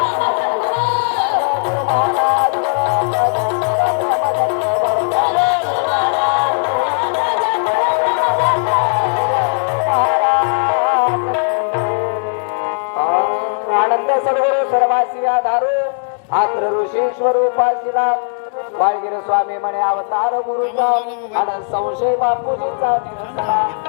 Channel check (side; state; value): right; silent; digital silence